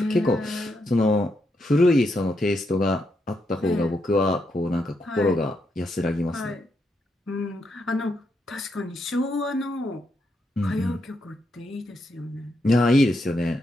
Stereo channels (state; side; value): normal; both; correlation 0.81